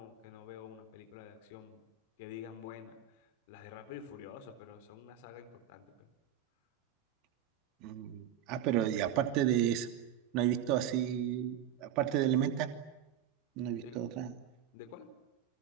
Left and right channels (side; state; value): left; quieter; 9.9 dB